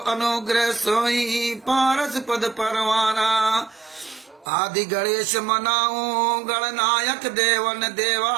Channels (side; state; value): left; drops out; at 4.5 s